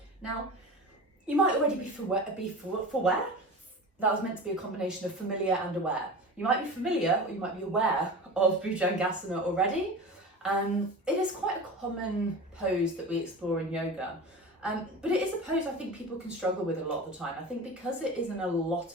Now, you might already be aware. That was meant to be a combination of familiar and aware. You might be familiar or you might be aware of Bhujangasana already. It is quite a common pose that we explore in yoga. But it is a pose I think people can struggle with a lot of the time. I think because it isn't a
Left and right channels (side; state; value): both; normal; correlation 0.32